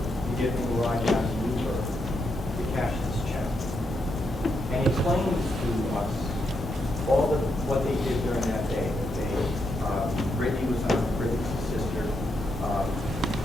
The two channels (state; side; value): normal; both; correlation 0.81